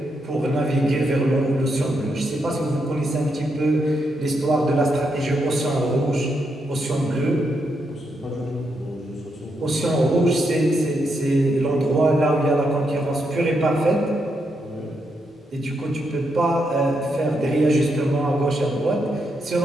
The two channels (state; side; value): normal; both; correlation 0.81